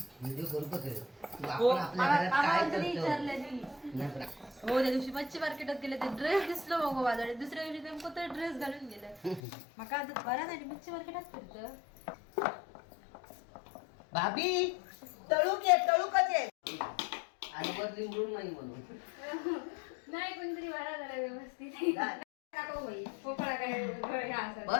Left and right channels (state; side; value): drops out; right; at 9.4 s